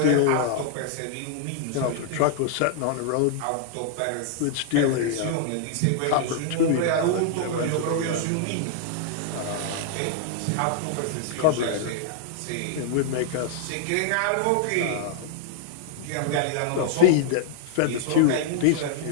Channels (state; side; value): different; both; correlation -0.01